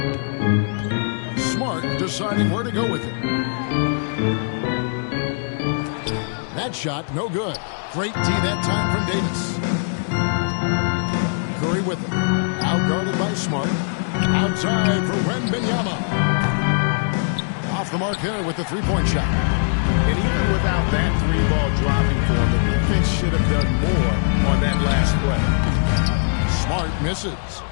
Smart deciding where to go with it. That shot, no good. Great D that time from Davis. Curry with it. Out guarded by Smart. Outside for Wembanyama. Off the mark there with the three-point shot. And even without that three-ball dropping for him, the defense should have done more on that last play. Smart misses.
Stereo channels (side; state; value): right; silent; digital silence